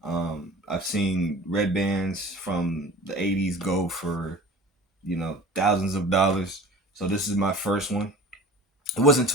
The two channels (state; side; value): normal; both; correlation 0.41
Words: I've seen red bands from the 80s go for, thousands of dollars. So this is my first one. It wasn't